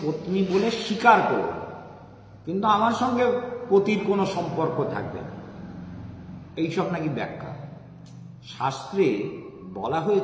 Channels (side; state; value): both; identical; correlation 1.00